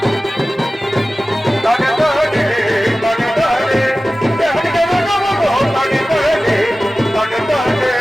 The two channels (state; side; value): normal; both; correlation 0.96